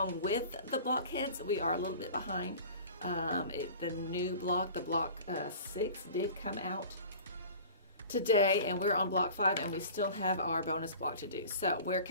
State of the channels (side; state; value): both; inverted; correlation -0.41